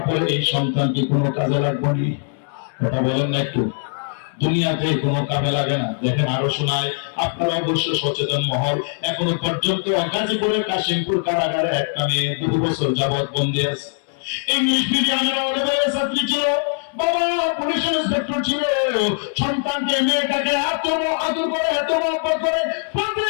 পরে এই সন্তান কি কোনো কাজে লাগবে নি? কথা বলেন না একটু। দুনিয়াতে কোনো কাজে লাগে না। দেখেন আরো শোনায়, আপনারা অবশ্য সচেতন মহল। এখনো পর্যন্ত গাজীপুরের কাশিমপুর কারাগারে একটা মেয়ে 2 বছর যাবৎ বন্দী আছে। ইংলিশ মিডিয়ামের অনেক ছাত্রী ছিল, বাবা পুলিশ ইন্সপেক্টর ছিল। সন্তানকে মেয়েটাকে এত আদর করে, এত মহব্বত করে, প্রতি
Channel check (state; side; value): silent; right; 65 dB below the other